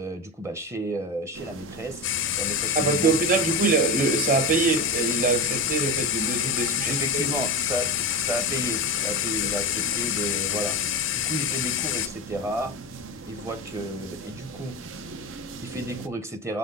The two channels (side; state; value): both; normal; correlation 0.21